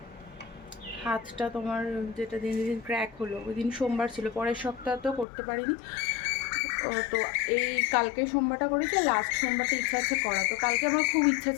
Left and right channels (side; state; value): right; drops out; at 5.2 s